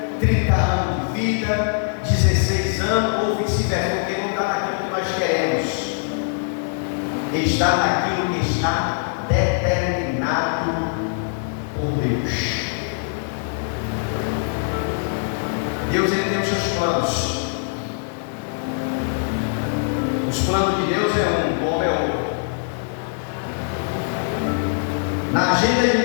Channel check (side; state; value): right; silent; digital silence